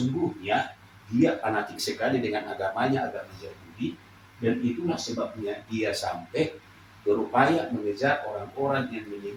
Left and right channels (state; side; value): identical; both; correlation 1.00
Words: dia fanatik sekali dengan agamanya, agama Yahudi, dan itulah sebabnya dia sampai berupaya mengejar orang-orang yang